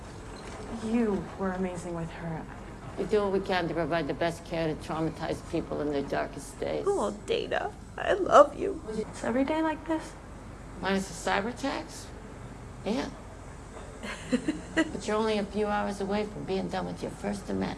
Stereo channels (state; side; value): identical; both; correlation 1.00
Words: You were amazing with her. We do what we can to provide the best care to traumatized people in their darkest days. Oh, Dana, I love you. It's every day like this? Minus the cyber attacks? Yeah. But you're only a few hours away from being done with your first of